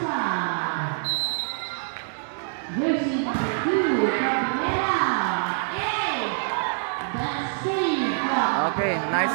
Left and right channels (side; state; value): left; silent; digital silence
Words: Jersey number 2, Cabrera. Hey! That's save. Okay, nice